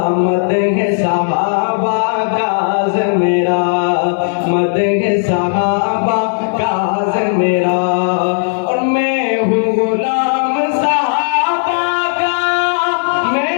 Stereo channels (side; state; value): right; silent; digital silence